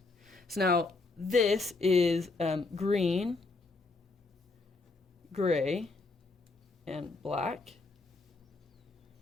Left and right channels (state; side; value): quieter; right; 3.6 dB